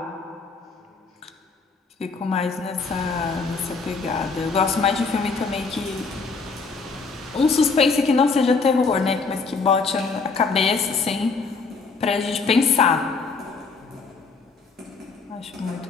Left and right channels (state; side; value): quieter; right; 4.5 dB